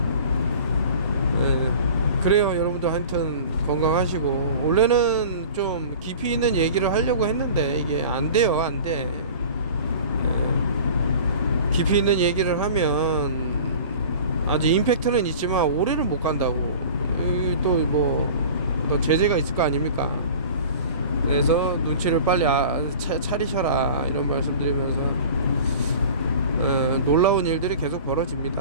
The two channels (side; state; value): both; inverted; correlation -0.41